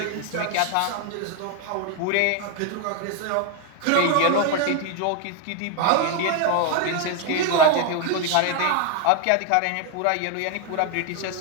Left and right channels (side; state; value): both; different; correlation 0.01